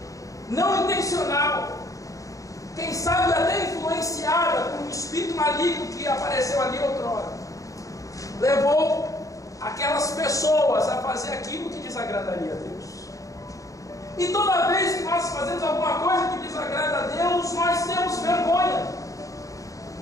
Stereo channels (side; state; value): right; late; 0.16 ms